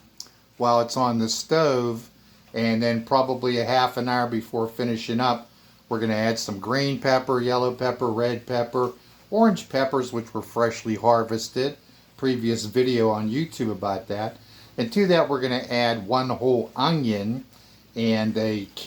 while it's on the stove, and then probably a half an hour before finishing up, we're going to add some green pepper, yellow pepper, red pepper, orange peppers, which were freshly harvested. Previous video on YouTube about that. And to that, we're going to add one whole onion and a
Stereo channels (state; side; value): identical; both; correlation 1.00